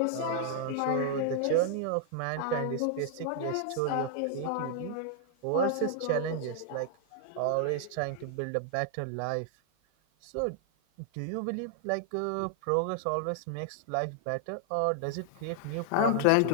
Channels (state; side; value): different; both; correlation 0.00